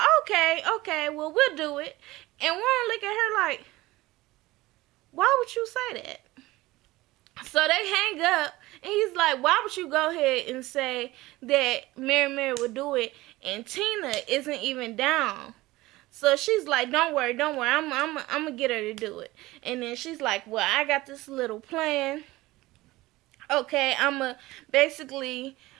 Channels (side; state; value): left; quieter; 19.0 dB